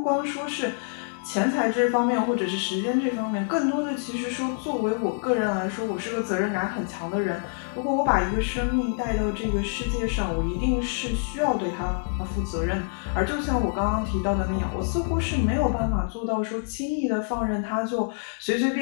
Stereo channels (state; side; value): silent; right; 61 dB below the other